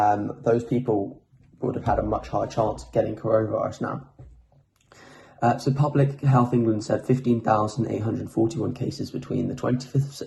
people would have had a much higher chance of getting coronavirus now. So Public Health England said 15,841 cases between the 25th of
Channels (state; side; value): identical; both; correlation 1.00